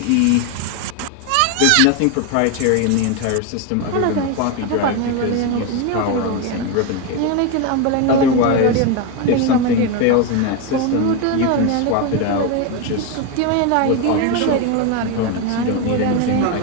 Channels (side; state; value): both; different; correlation 0.02